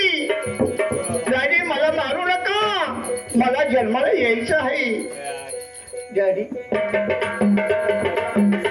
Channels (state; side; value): identical; both; correlation 1.00